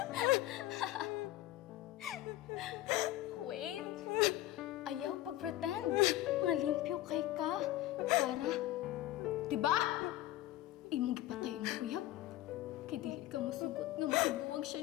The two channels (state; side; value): quieter; right; 15.2 dB